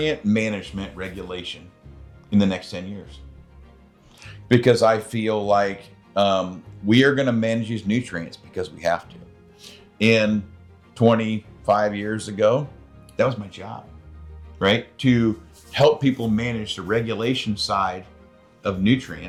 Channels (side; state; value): both; identical; correlation 1.00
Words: management regulation in the next 10 years. Because I feel like we are going to manage these nutrients because we have to. And 25 years ago, that was my job, right? To help people manage the regulation side of